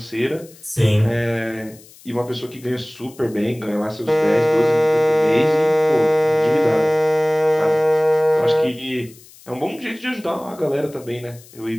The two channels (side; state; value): left; noise; hiss, 23 dB below the sound